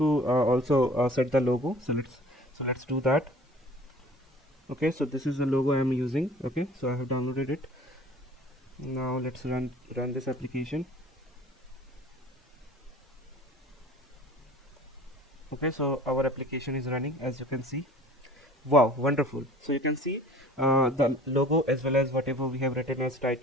also set the logo, so let's do that. Okay, so this is the logo I am using. Okay, so I have downloaded it. Now let's run this application. Okay, so our application is running, as you can see. Wow, wonderful. So you can see the logo as well as whatever we have written as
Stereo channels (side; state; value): both; normal; correlation 0.47